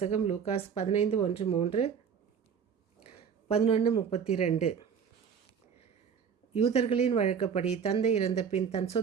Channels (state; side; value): quieter; left; 7.1 dB